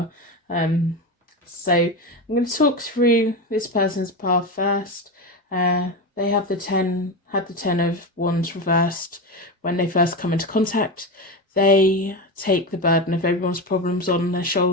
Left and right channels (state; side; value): normal; both; correlation 0.19